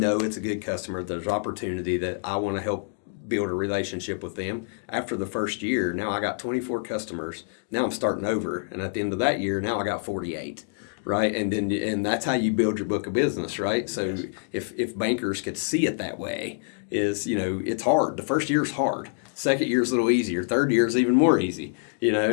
it's a good customer, there's opportunity, that I want to help build a relationship with them. After the first year, now I got 24 customers. Now I'm starting over, and at the end of that year, now I got 48, right? And that's how you build your book of business, right? So if bankers could see it that way, it's hard. The first year is hard. Second year is a little easier. Third year is even more easy,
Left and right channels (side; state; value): right; silent; digital silence